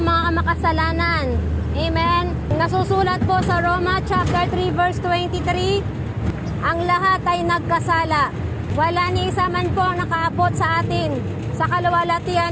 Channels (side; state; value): both; identical; correlation 1.00